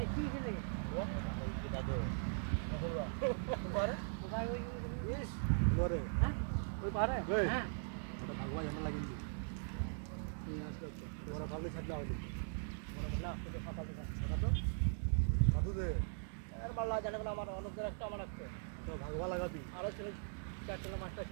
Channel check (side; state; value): left; silent; digital silence